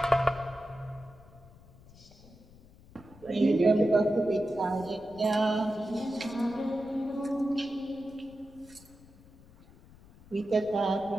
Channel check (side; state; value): left; noise; rumble, 23 dB below the sound